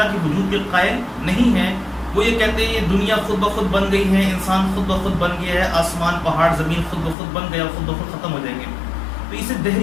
کے وجود کے قائل نہیں ہیں، وہ یہ کہتے ہیں یہ دنیا خود بخود بن گئی ہے، انسان خود بخود بن گیا ہے، آسمان پہاڑ زمین خود بخود بن گیا، خود بخود ختم ہو جائیں گے. تو اسے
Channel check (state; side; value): drops out; right; at 7.2 s